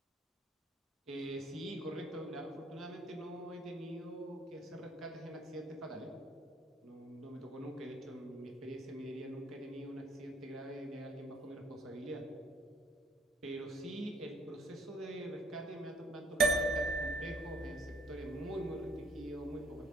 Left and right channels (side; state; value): both; normal; correlation 0.62